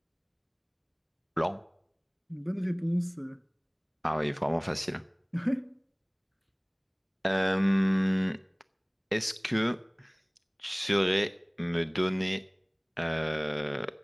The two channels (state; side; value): identical; both; correlation 1.00